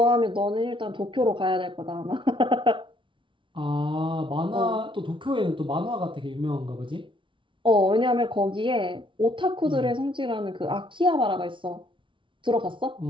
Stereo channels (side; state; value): left; late; 0.24 ms